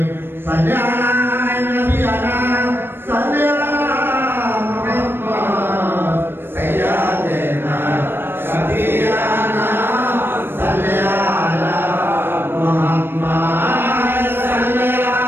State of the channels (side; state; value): left; late; 0.10 ms